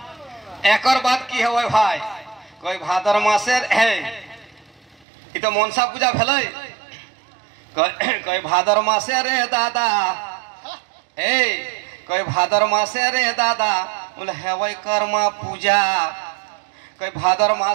एकर बात की है भाई कोई भादर मासे है कि तो मनसा पूजा भेलै कोई भादर मासे रे दादा ए कोई भादर मासे रे दादा बोले हेवै कर्मा पूजा कोई भादर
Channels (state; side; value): drops out; left; at 5.1 s